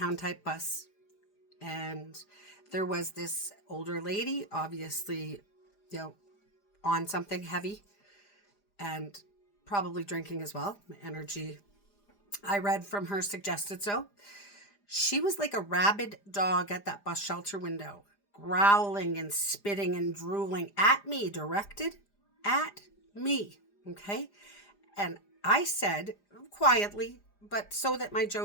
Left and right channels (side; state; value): right; late; 4.9 ms